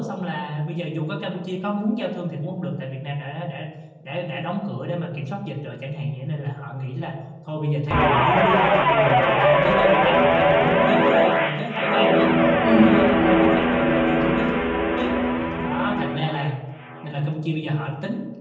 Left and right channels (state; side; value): identical; both; correlation 1.00